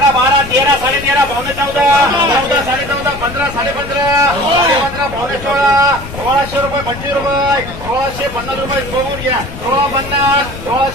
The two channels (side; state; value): left; noise; rumble, 12 dB below the sound